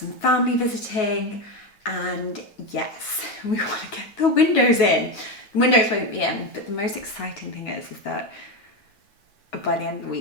family visiting, and yes, we want to get the windows in. The windows won't be in, but the most exciting thing is that by the end of the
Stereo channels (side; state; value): right; late; 9.5 ms